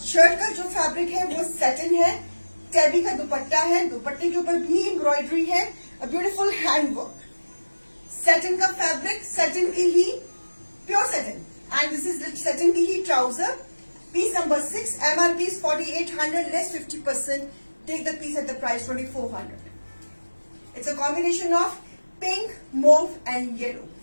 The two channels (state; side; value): inverted; both; correlation -1.00